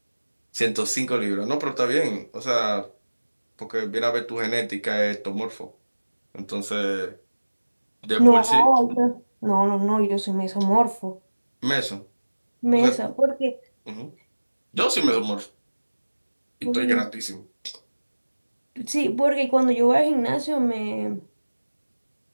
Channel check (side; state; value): both; inverted; correlation -1.00